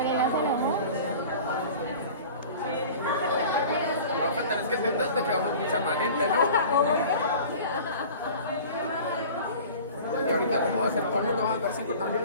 Es que te quedó mucha más gente, ¿no? Y ahorita como vamos a hacer, todo el mundo va a dar 5 también,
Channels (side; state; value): both; inverted; correlation -0.41